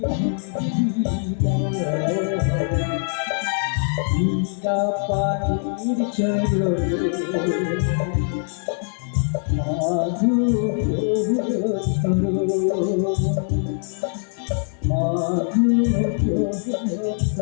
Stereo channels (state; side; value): silent; right; digital silence